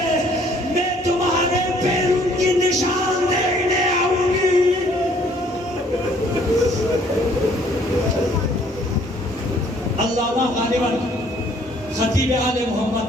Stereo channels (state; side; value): normal; both; correlation 0.60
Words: میں تمہارے پیروں کی نشان دیکھنے آؤں گی. علامہ غالباً خطیب آل